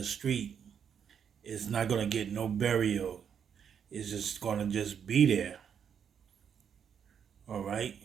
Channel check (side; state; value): left; quieter; 7.8 dB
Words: street. It's not gonna get no burial. It's just gonna just be there. All right.